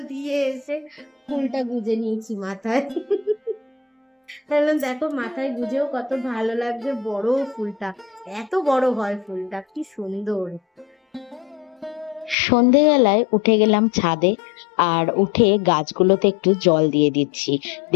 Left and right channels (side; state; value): right; drops out; at 12.4 s